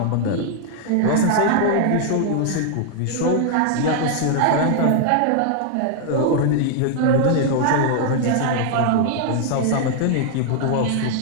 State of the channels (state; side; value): different; both; correlation 0.00